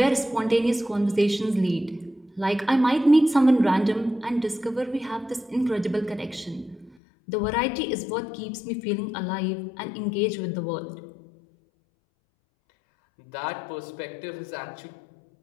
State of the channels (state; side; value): drops out; right; at 7.0 s